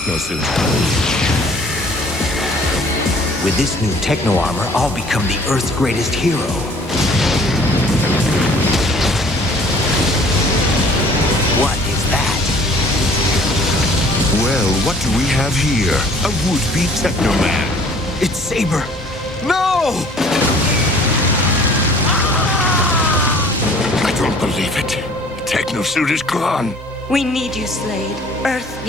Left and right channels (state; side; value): normal; both; correlation 0.53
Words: With this new techno armor, I'll become the Earth's greatest hero. What is that? Well, what do we have here? A would-be Teknoman. It's Saber. No! I don't believe it. Tekno-suit is gone. We need you, Slade. Earth